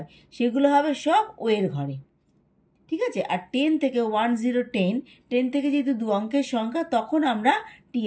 সেগুলো হবে সব ও এর ঘরে, ঠিক আছে? আর 10 থেকে 10 10 থেকে যেহেতু দু অঙ্কের সংখ্যা, তখন আমরা টি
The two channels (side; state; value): both; identical; correlation 1.00